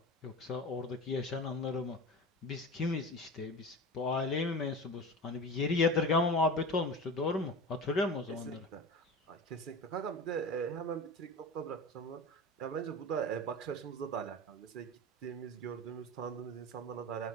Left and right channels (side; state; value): both; normal; correlation 0.31